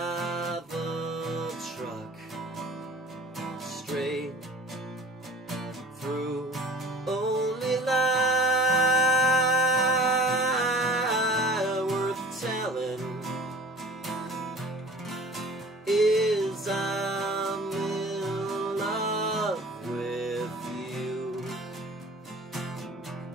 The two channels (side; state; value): both; normal; correlation 0.44